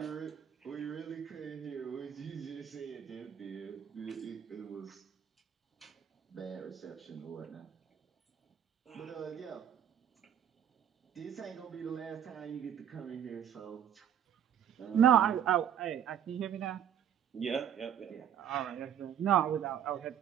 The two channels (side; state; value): left; quieter; 9.3 dB